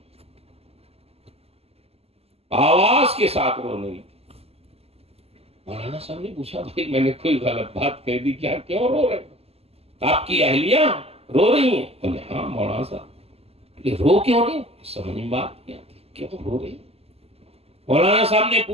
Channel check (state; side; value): late; left; 0.29 ms